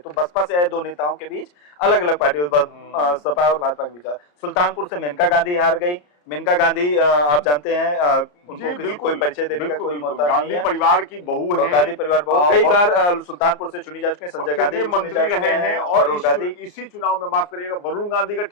बसपा से आए 2 नेताओं के बीच अलग अलग पार्टी, सपा और भाजपा के बीच। सुल्तानपुर से मेनका गांधी हार गई। मेनका गांधी आप जानते हैं, उनको कोई परिचय देने का कोई मौका नहीं है। परिवार की बहू है, गांधी परिवार बहू, कई बार सुल्तानपुर से चुनी जा चुके हैं। संजय गांधी मंत्री रहे हैं, और इसी चुनाव में, माफ करिएगा, वरुण गांधी का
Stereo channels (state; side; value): late; right; 34 ms